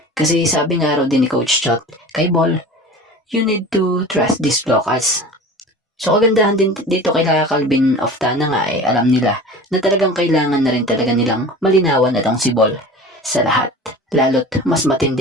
Kasi sabi nga raw din ni Coach Chot kay Bol, you need to trust these locals. So kagandahan din dito kay Calvin Optana nga alam nila na talagang kailangan na rin talaga nilang malinawan itong si Bol sa lahat. Lalo't mas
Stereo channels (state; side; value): normal; both; correlation 0.37